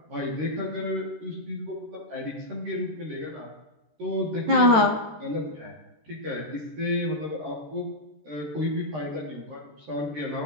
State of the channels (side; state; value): left; late; 13 ms